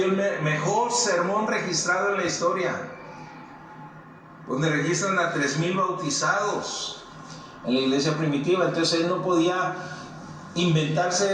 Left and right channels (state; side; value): identical; both; correlation 1.00